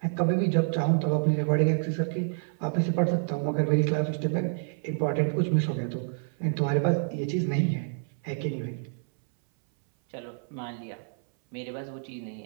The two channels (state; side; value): silent; left; 59 dB below the other